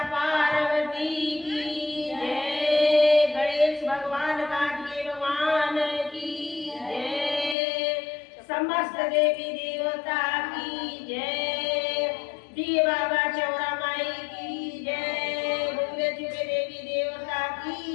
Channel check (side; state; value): right; drops out; at 7.6 s